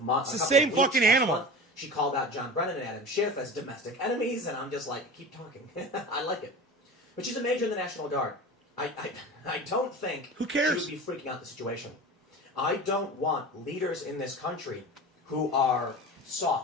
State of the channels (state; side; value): normal; both; correlation 0.33